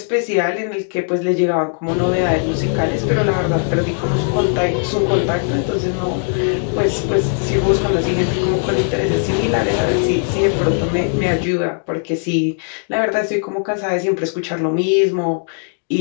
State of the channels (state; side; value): silent; right; 56 dB below the other